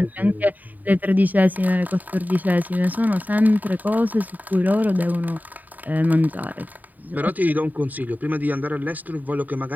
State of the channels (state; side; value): late; left; 0.083 ms